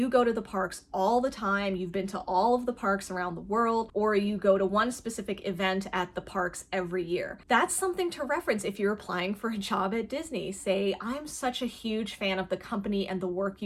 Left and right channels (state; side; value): identical; both; correlation 1.00